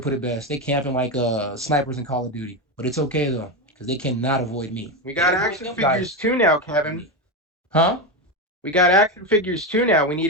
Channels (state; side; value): normal; both; correlation 0.13